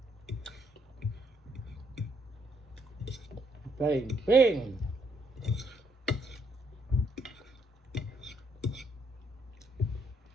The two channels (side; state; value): both; normal; correlation 0.72